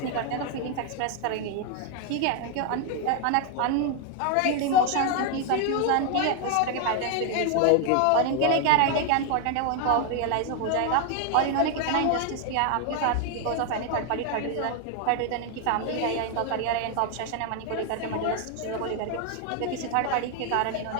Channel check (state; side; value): different; both; correlation 0.00